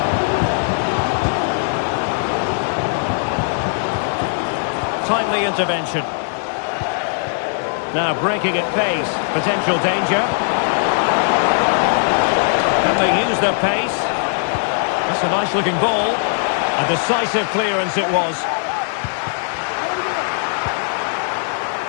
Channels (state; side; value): silent; right; digital silence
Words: Time timely intervention. Now breaking at pace. Potential danger. Can they use their pace? That's a nice-looking ball. A decisive clearance it was.